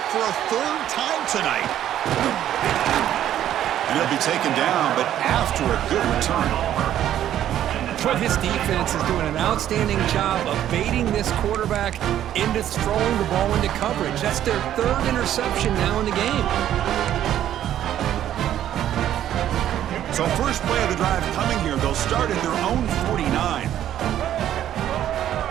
for a 3rd time tonight. And he'll be taken down, but after a good return. But this defense is doing an outstanding job of baiting this quarterback into throwing the ball into coverage. That's their 3rd interception now in the game. So first play of the drive coming here. They'll start at their own 49.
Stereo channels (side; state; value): left; quieter; 11.4 dB